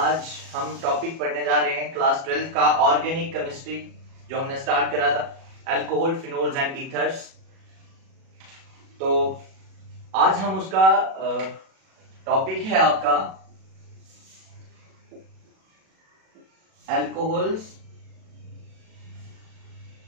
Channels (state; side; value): late; left; 37 ms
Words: हम topic पढ़ने जा रहे हैं क्लास 12 का ऑर्गेनिक केमिस्ट्री, जो हमने स्टार्ट करा था, अल्कोहल, फिनोल्स एंड ईथर्स। तो आज हम उसका टॉपिक है आपका alcohols,